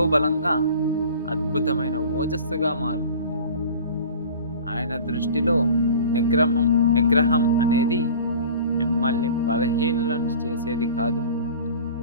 అద్భుతమైన ఓజస్సుగా మారుతుంది. ఆయన దృష్టిలో నిగ్రహం అనేది మిమ్మల్ని బలహీనులను చేసేది కాదు.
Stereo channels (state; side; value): inverted; both; correlation -0.41